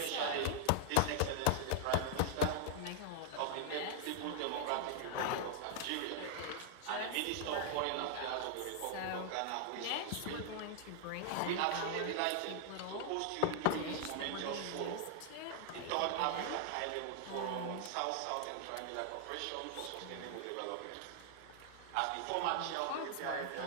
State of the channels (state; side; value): different; both; correlation -0.01